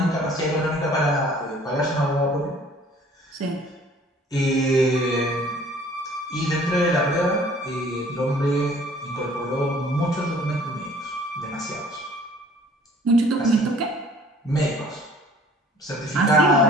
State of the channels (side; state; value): both; normal; correlation 0.54